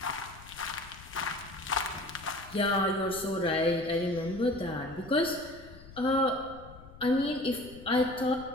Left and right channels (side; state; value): left; noise; rumble, 18 dB below the sound